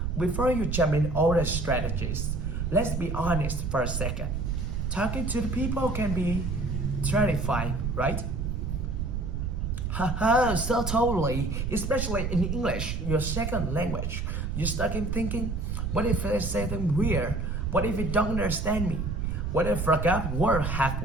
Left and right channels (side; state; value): right; noise; rumble, 2 dB below the sound